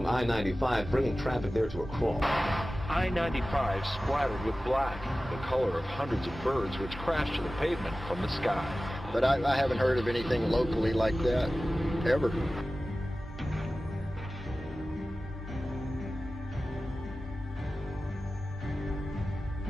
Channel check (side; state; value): both; normal; correlation 0.96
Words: I-95, bringing traffic there to a crawl. I-95 splattered with black, the color of hundreds of birds which crashed to the pavement from the sky. But I haven't heard of anything locally like that, ever.